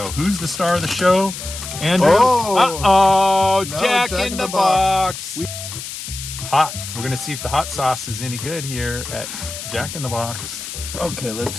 Who's the star of the show? Andrew? Oh! No, Jack in the Box. Hot. We're going to see if the hot sauce is any good here at Jack in the Box. Okay, let's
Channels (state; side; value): noise; left; hiss, 9 dB below the sound